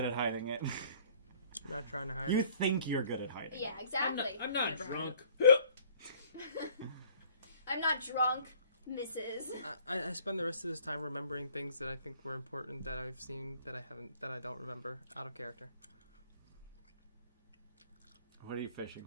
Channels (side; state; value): both; inverted; correlation -0.55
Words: at hiding it. I'm not trying to hide You it. think you're good at hiding. Yeah, exactly. I'm not Never drunk. I'm not drunk, Mrs. I spend the rest of this time remembering things that I think were important that I've seen that I don't remember out of character. What are you fishing